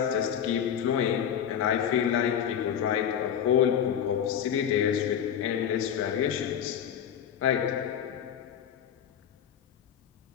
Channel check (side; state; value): right; quieter; 9.0 dB